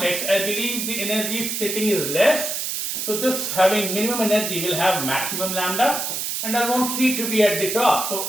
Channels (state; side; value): noise; right; hiss, 2 dB below the sound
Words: I believe the energy splitting is less. So this having minimum energy will have maximum lambda, and I want C to be at the top. So